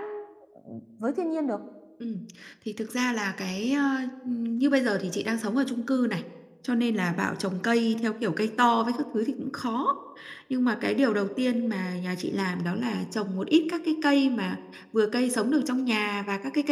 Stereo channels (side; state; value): both; identical; correlation 1.00